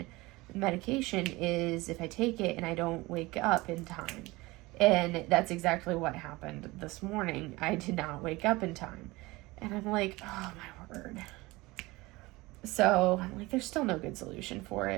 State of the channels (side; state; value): left; quieter; 21.5 dB